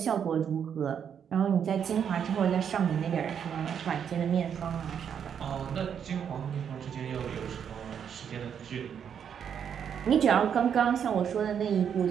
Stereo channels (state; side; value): quieter; left; 8.0 dB